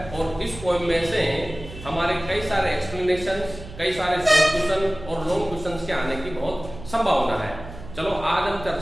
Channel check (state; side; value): noise; right; hum, 14 dB below the sound